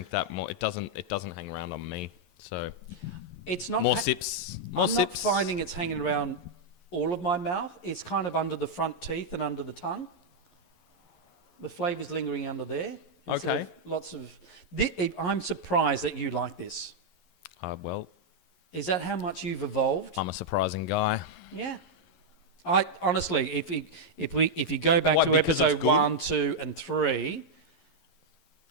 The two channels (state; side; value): late; right; 11 ms